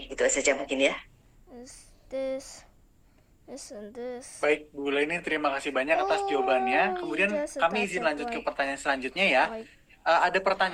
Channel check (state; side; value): identical; both; correlation 1.00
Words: itu saja mungkin ya. Baik, Bu Leni, terima kasih banyak atas jawabannya. Kemudian kami izin lanjut ke pertanyaan selanjutnya ya. Ada